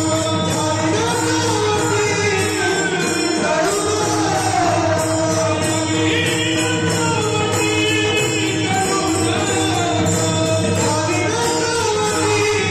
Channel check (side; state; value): both; identical; correlation 1.00